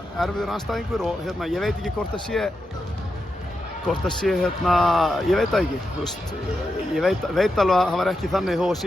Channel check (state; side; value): normal; both; correlation 0.87